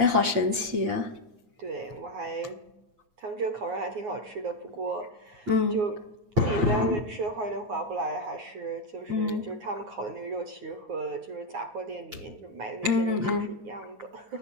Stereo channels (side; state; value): left; late; 8.6 ms